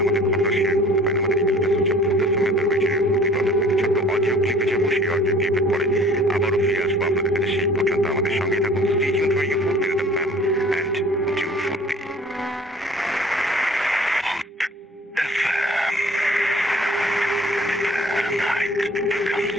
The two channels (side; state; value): both; normal; correlation 0.50